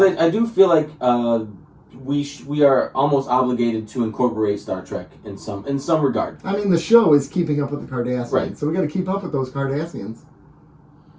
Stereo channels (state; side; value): identical; both; correlation 1.00